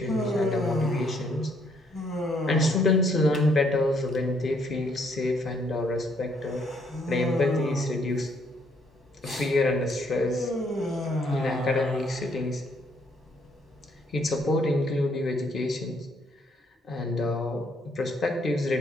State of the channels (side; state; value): both; normal; correlation 0.69